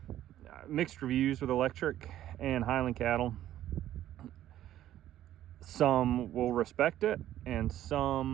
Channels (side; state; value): left; quieter; 12.6 dB